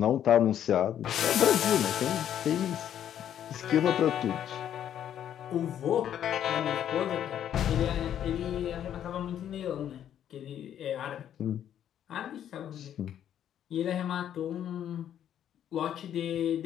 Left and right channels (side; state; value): right; quieter; 10.2 dB